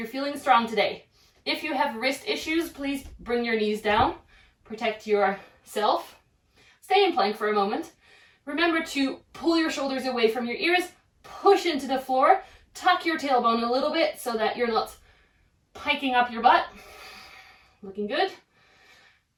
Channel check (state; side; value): identical; both; correlation 1.00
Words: feeling strong today. If you have wrist issues, please bring your knees down, protect yourself. Stay in plank for a moment. Remember to pull your shoulders away from your ears, push into the floor, tuck your tailbone a little bit so that you're not piking up your butt. Looking good.